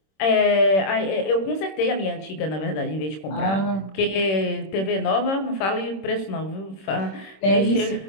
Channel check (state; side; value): late; right; 26 ms